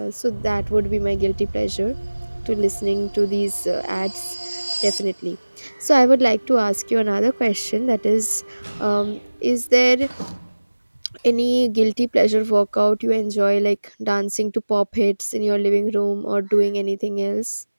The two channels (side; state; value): both; inverted; correlation -1.00